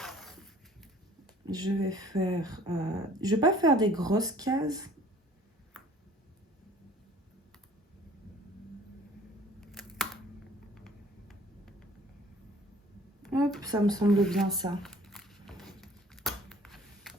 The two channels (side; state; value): both; normal; correlation 0.53